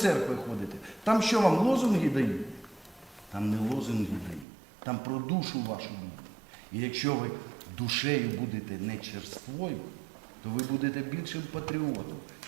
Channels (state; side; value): drops out; left; at 4.5 s